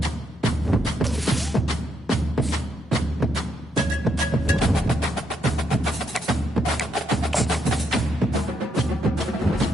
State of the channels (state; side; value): normal; both; correlation 0.77